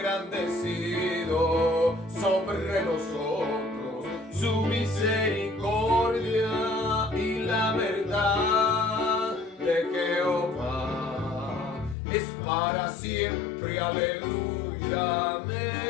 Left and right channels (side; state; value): right; drops out; at 12.0 s